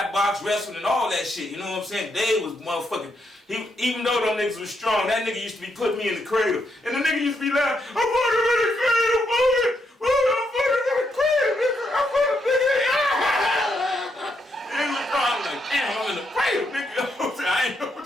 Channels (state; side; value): normal; both; correlation 0.78